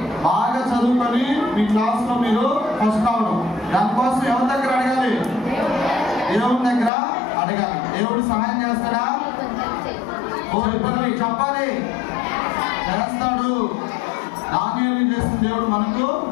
బాగా చదువుకొని మీ క్లాస్లో మీరు ఫస్ట్ కావడం దానికోసం ఎవరి దగ్గర అడగాలి దేవుని దగ్గర అడగాలి. దేవుడు సహాయం చేస్తాడా? చెప్పాలి, చేస్తాడు. దానియేలు చేసిన దేవుడు మనకు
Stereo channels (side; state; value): right; drops out; at 6.9 s